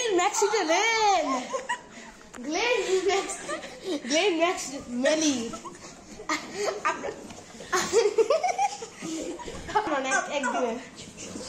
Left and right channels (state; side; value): identical; both; correlation 1.00